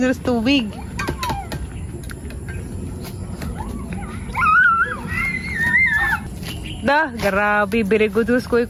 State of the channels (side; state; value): both; identical; correlation 1.00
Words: sa tubig. Dah, grabe, very good us kuy